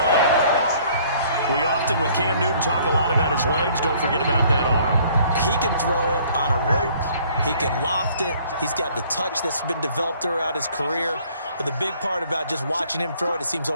We often, with Cam Newton, talk a lot about his legs. Don't forget about that arm. He can throw it on a rope. He can loft it. He's got the touch that's been developed throughout his career. But the big part about just watching him throw it, it seems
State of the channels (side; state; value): both; inverted; correlation -0.58